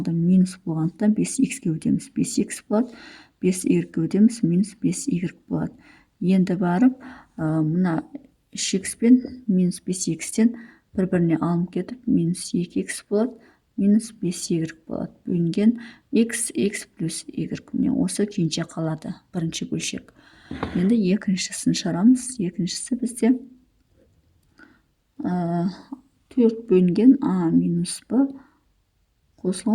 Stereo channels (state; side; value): identical; both; correlation 1.00